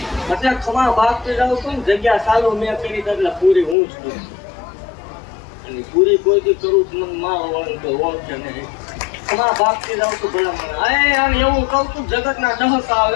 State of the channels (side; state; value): right; drops out; at 3.8 s